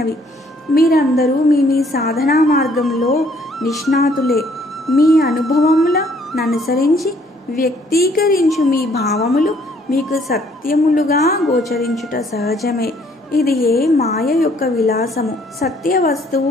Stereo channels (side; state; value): both; normal; correlation 0.63